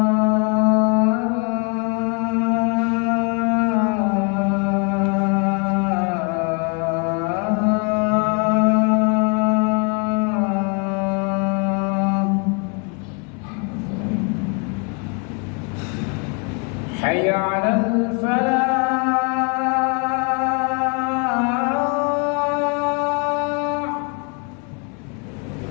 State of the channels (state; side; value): quieter; right; 34.8 dB